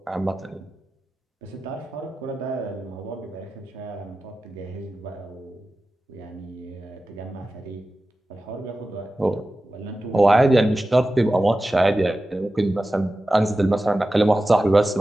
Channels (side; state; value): both; normal; correlation 0.94